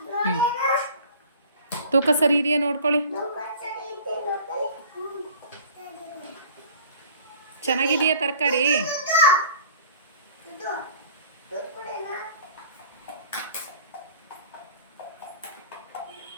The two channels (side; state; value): both; inverted; correlation -0.47